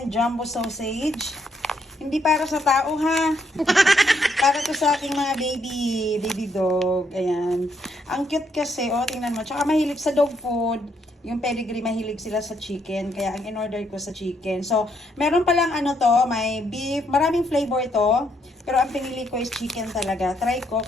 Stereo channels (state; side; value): normal; both; correlation 0.73